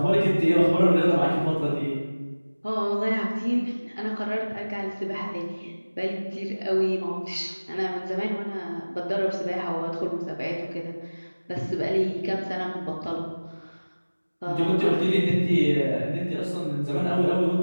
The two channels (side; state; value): both; inverted; correlation -1.00